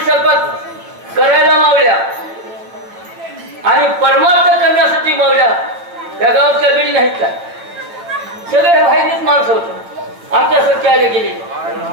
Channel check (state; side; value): late; left; 8.5 ms